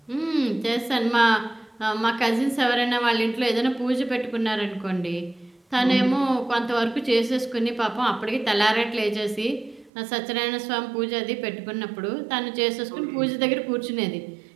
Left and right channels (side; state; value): left; drops out; at 9.9 s